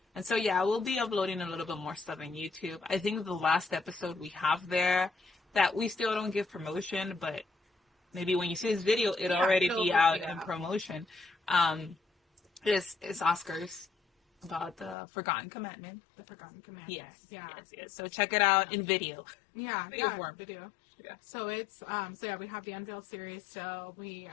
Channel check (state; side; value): drops out; right; at 15.0 s